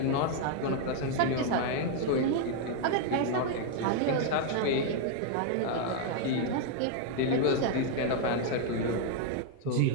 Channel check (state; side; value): different; both; correlation 0.00